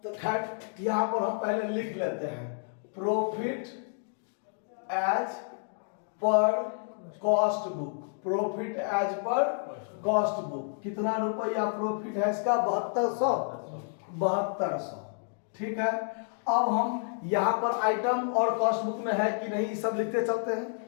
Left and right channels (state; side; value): silent; right; 58 dB below the other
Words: तो खैर यहां पर हम पहले लिख लेते हैं profit as per cost book. Profit as per cost book कितना रुपया प्रॉफिट है इसका? 7200। ठीक है। अब हम यहां पर आइटम और कॉस्ट बुक में है कि नहीं सब लिखते चलते हैं।